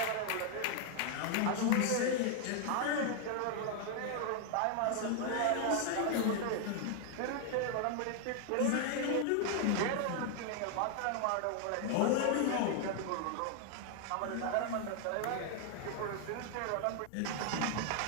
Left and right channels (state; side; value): different; both; correlation 0.00